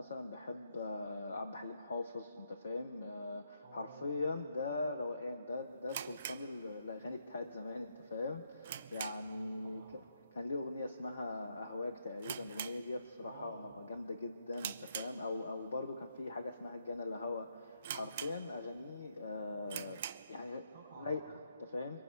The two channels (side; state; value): both; inverted; correlation -0.76